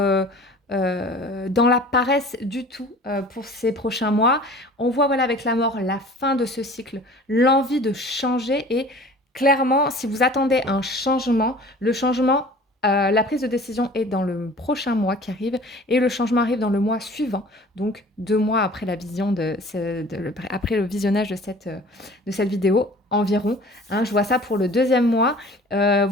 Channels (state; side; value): normal; both; correlation 0.45